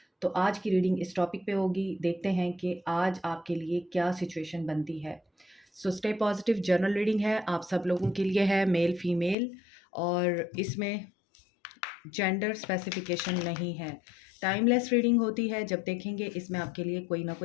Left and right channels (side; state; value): right; drops out; at 9.3 s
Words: तो आज की रीडिंग इस टॉपिक पे होगी। देखते हैं कि आज आपके लिए क्या सिचुएशन बनती है। स्टे पॉजिटिव जनरल रीडिंग है, आप सब लोगों के लिए है, मेल फीमेल, और इसमें जेंडर स्पेसिफिकेशन नहीं है। टाइमलेस रीडिंग होती है। जब देखेंगे इसमें आपके लिए कोई ना